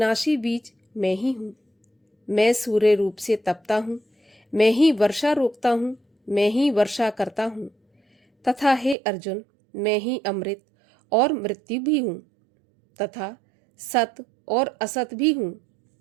बीज मैं ही हूँ। मैं सूर्य रूप से तपता हूँ। मैं ही वर्षा रोकता हूँ। मैं ही वर्षा करता हूँ। तथा हे अर्जुन, मैं ही अमृत और मृत्यु भी हूँ, तथा सत और असत भी हूँ।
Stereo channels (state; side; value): drops out; left; at 9.0 s